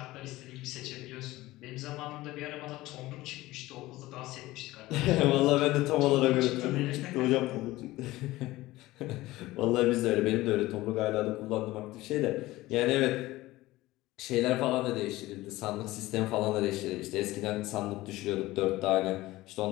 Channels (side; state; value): right; quieter; 18.0 dB